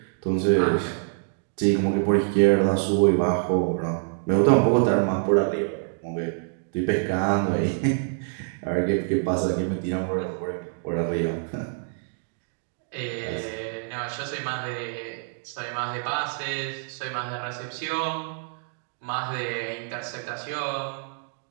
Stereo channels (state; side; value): silent; left; digital silence